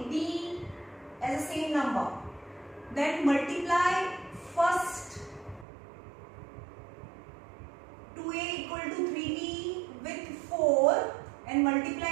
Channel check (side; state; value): left; drops out; at 5.7 s